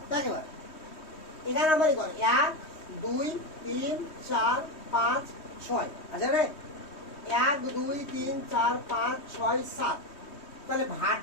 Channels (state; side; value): late; right; 3.2 ms